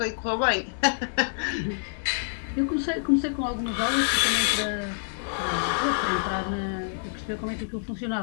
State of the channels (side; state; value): right; silent; digital silence